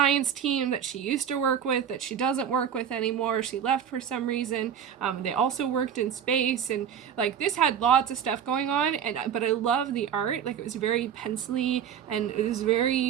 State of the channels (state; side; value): quieter; left; 8.6 dB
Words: team that she used to work with, that she doesn't work with anymore. She left for some reason. They also worked in space, and like this had lots of stuff going on. But I love the art. Like, it was very pencily, and it was